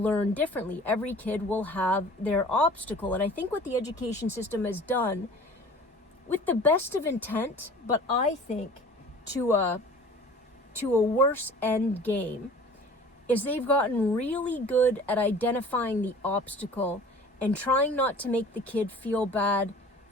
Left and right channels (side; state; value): both; normal; correlation 0.45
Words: differently. Every kid will have their obstacle. And I think what the education system has done, with the best of intent, but I think to a worse end game, is they've gotten really good at identifying the obstacle and trying not to make the kid feel bad